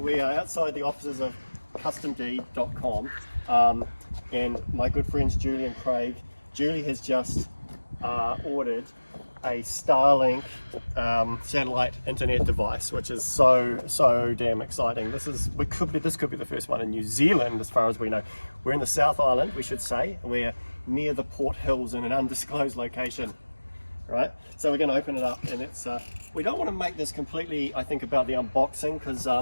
We are outside the offices of customd.com and my good friends Julie and Craig. Julie has just ordered a Starlink satellite internet device, which is so damn exciting. This could be the first one in New Zealand as far as we know. We're in the South Island, we should say. We're near the Port Hills in an undisclosed location. Right, so we're going to open it up, and it's we don't want to make this completely, I think, about the unboxing, because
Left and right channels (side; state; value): both; inverted; correlation -1.00